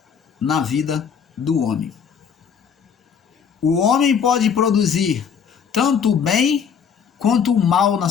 na vida do homem. O homem pode produzir tanto o bem quanto o mal na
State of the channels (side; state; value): right; quieter; 7.0 dB